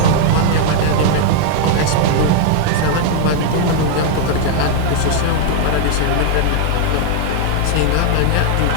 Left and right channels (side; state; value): both; different; correlation 0.00